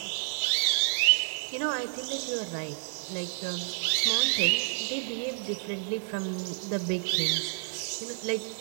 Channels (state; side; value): silent; left; digital silence